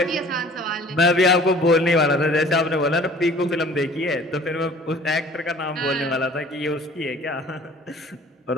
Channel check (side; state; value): both; normal; correlation 0.49